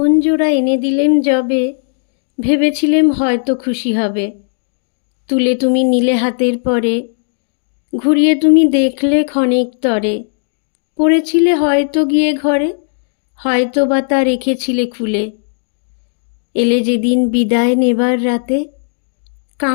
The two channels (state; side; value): silent; right; digital silence